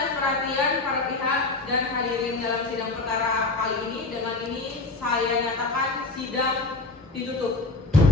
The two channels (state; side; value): quieter; right; 3.4 dB